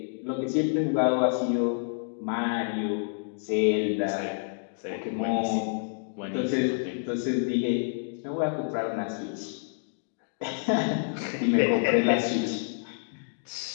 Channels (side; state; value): right; silent; digital silence